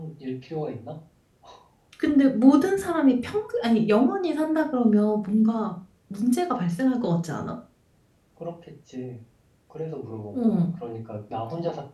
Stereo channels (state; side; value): identical; both; correlation 1.00